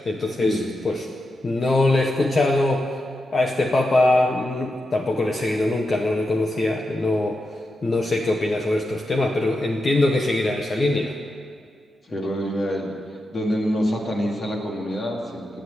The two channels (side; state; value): both; normal; correlation 0.88